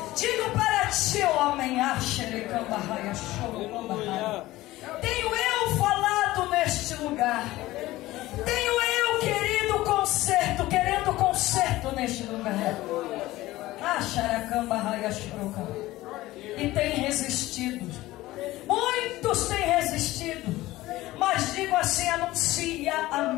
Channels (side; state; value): right; quieter; 17.4 dB